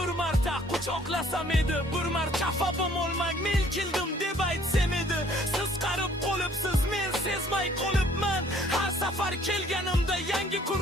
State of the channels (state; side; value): normal; both; correlation 0.58